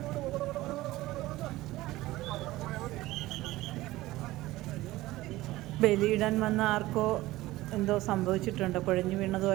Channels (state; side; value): quieter; left; 17.7 dB